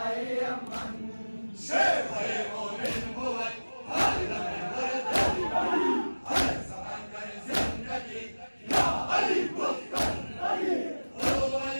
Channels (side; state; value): both; inverted; correlation -1.00